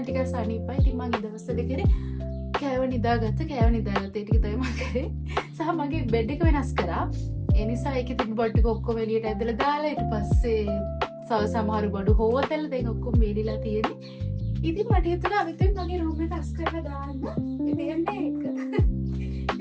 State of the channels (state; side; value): identical; both; correlation 1.00